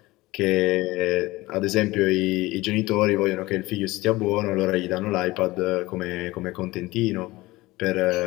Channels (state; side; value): quieter; right; 19.8 dB